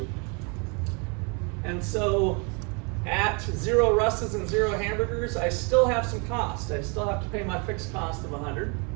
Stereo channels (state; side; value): quieter; left; 33.8 dB